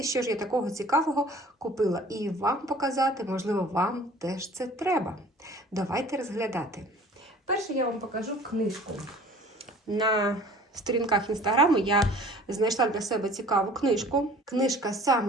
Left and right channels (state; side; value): normal; both; correlation 0.48